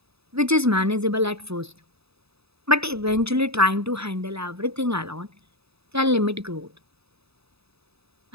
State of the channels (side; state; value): left; late; 0.78 ms